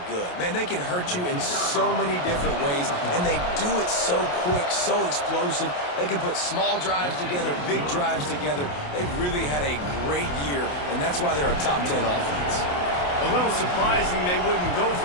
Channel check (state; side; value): late; right; 28 ms